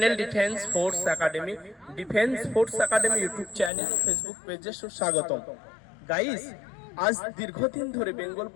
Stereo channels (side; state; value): right; drops out; at 3.7 s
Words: Defense Force Academy. Defense Force Academy YouTube channel Facebook page সুস্বাগতম। Guys, আজ দীর্ঘদিন ধরে বেঙ্গল